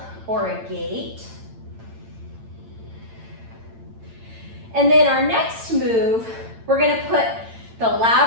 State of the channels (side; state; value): left; late; 8.9 ms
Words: or a gate. And then our next move, we're gonna put the